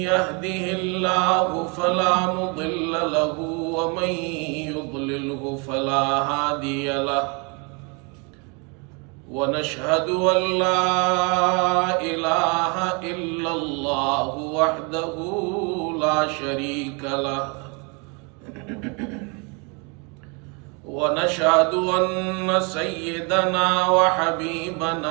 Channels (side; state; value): left; quieter; 32.4 dB